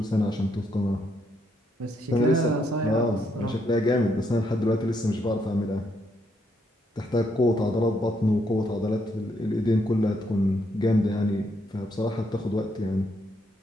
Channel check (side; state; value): both; normal; correlation 0.75